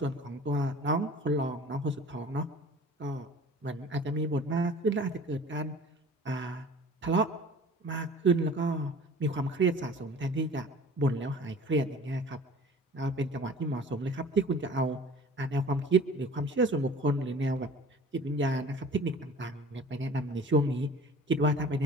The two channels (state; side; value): normal; both; correlation 0.44